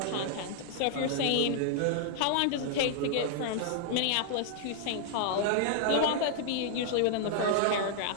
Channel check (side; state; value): both; different; correlation -0.01